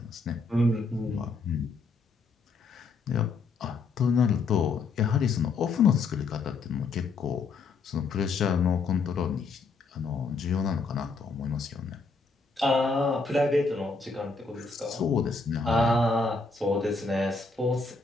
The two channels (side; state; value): right; quieter; 4.2 dB